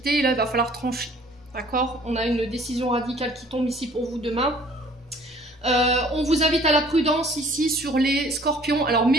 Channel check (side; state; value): both; normal; correlation 0.55